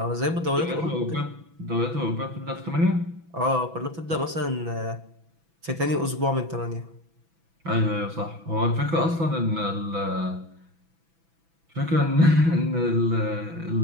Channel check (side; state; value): left; late; 6.0 ms